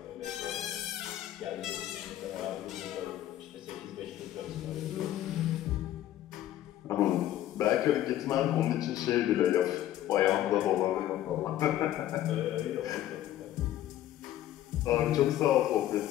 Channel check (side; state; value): right; quieter; 12.9 dB